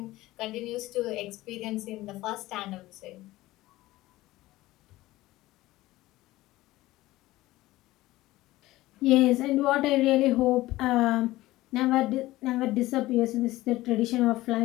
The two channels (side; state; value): right; quieter; 17.5 dB